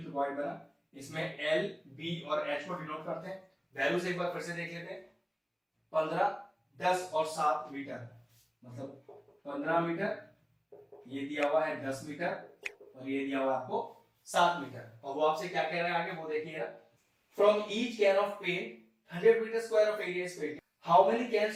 क्यूबॉइड बना, इसमें L, B और H को डिनोट करते हैं। वैल्यूज एक बार फिर से देख लेते हैं, 15, 10 और 7 मीटर, मतलब 15 मीटर, ये दिया हुआ है 10 मीटर और ये दिया हुआ है आपको 7 मीटर। और वो आपसे क्या कह रहा है आगे वो देखिएगा। From each can of paint 100 metre square of area is painted, how many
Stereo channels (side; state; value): both; identical; correlation 1.00